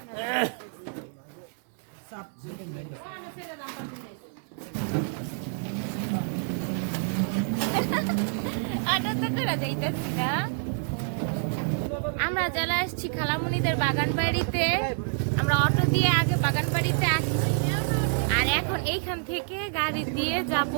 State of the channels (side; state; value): left; silent; 60 dB below the other